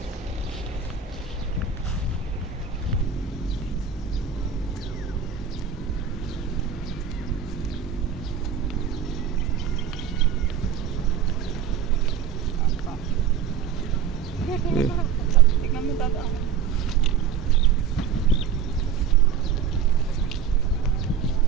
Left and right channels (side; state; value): left; quieter; 7.5 dB